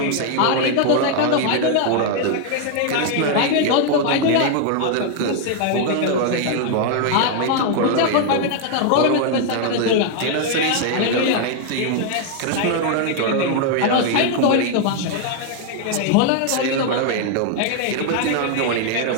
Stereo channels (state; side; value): different; both; correlation 0.00